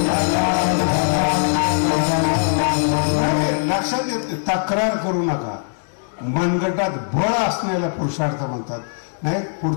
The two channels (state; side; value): silent; right; digital silence